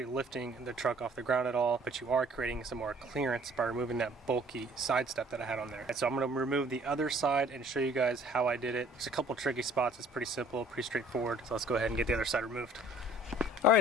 lifting the truck off the ground at all, but you are creating some more clearance by removing that bulky side step that I had on there. And so I'm going to remove the other side and show you guys how I did it. There's a couple tricky spots. It's pretty simple, pretty straightforward. So let's go ahead and get the other side removed.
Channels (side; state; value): both; normal; correlation 0.54